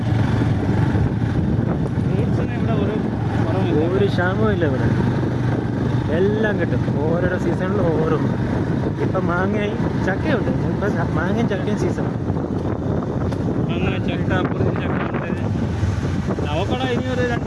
ഫ്രൂട്ട്സിന് ഇവിടെ ഒരു ക്ഷാമവും ഇല്ല ഇവിടെ. എല്ലാം കിട്ടും ഓരോരോ സീസണിൽ ഓരോ. ഇപ്പം മാങ്ങയും ചക്കയുണ്ട്. ഇപ്പം മാങ്ങയും ചക്കയും സീസൺ. അങ്ങനെ ചക്ക, അപ്പുറത്ത് ചക്ക ഉണ്ട്. അവക്കട ഇനി ഒരു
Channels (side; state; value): both; identical; correlation 1.00